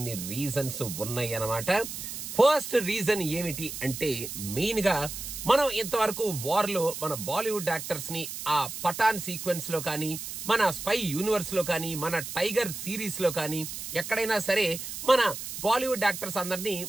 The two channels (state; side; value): noise; right; hiss, 8 dB below the sound